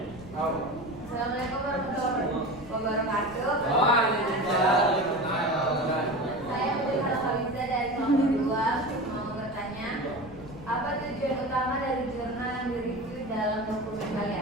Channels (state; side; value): noise; left; rumble, 18 dB below the sound